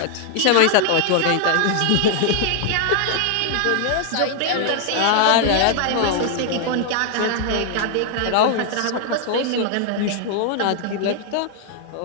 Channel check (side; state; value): both; different; correlation 0.00